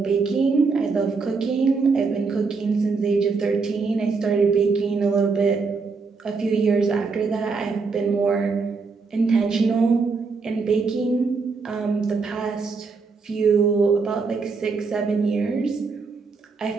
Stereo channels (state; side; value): quieter; left; 4.6 dB